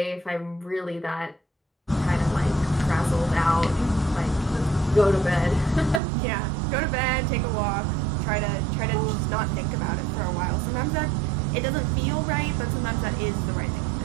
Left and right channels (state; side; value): drops out; left; at 6.0 s